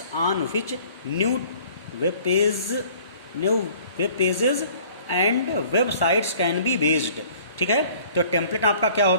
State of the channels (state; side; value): inverted; both; correlation -0.53